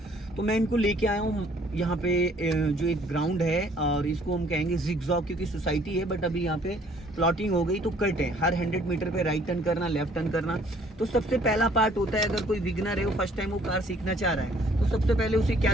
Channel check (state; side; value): normal; both; correlation 0.59